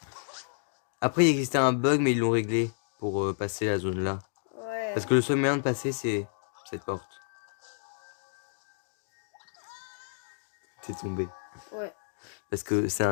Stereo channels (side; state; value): right; silent; digital silence